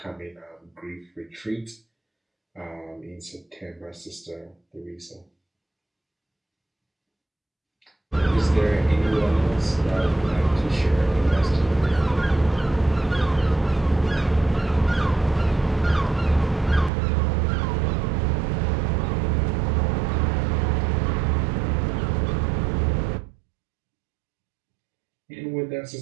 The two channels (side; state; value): left; drops out; at 16.9 s